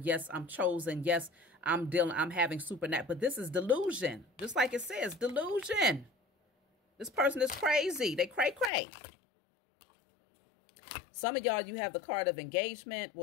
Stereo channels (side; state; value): right; drops out; at 8.7 s